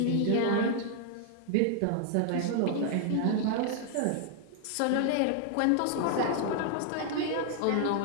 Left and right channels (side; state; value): both; different; correlation 0.00